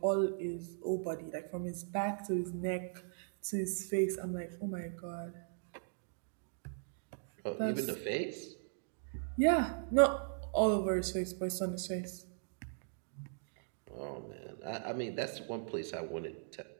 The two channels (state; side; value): silent; left; digital silence